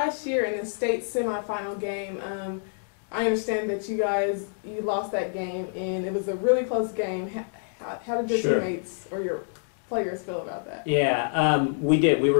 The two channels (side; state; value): right; silent; digital silence